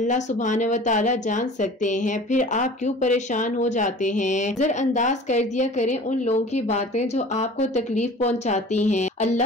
सुब्हानहू व तआला जान सकते हैं। फिर आप क्यों परेशान हो जाते हैं। नजरअंदाज कर दिया करें उन लोगों की बातें जो आपको तकलीफ पहुंचाती हैं।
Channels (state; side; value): normal; both; correlation 0.43